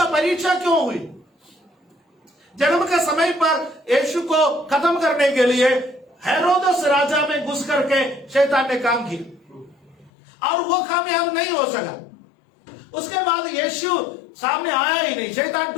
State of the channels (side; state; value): right; drops out; at 10.1 s